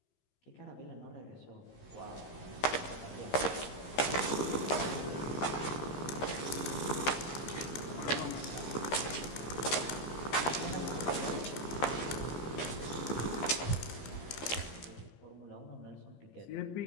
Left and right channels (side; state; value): right; late; 14 ms